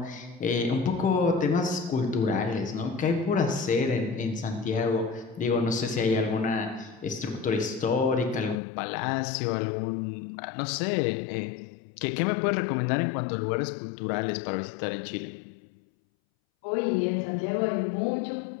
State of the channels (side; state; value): right; drops out; at 8.6 s